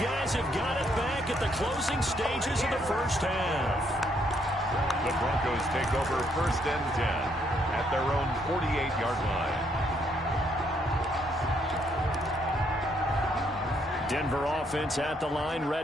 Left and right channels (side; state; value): both; normal; correlation 0.72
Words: have got it back at the closing stages of the first half. The Broncos take over 1st and 10 at their own 48-yard line. Denver offense at the line,